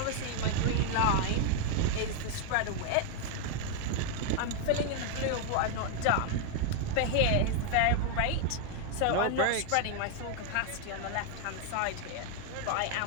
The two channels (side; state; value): both; different; correlation 0.00